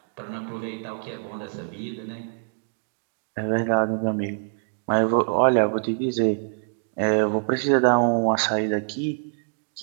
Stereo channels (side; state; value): left; silent; digital silence